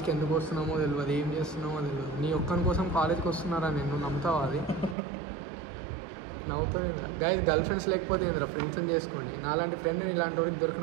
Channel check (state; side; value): drops out; left; at 5.0 s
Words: ఎందుకు వస్తున్నామో తెలియదు, ఏం చేస్తున్నామో తెలియదు. నీ ఒక్కని కోసం కాలేజ్కి వస్తున్నారా? నేను నమ్ముతావా? అది నవ్వుతావు ఏంద్రా గైస్. గర్ల్ ఫ్రెండ్స్ లేకపోతే ఏంద్రా, ఫ్రెండ్స్ని చేసుకోండి. నాలాంటి ఫ్రెండ్ ఇలాంటి వాడికి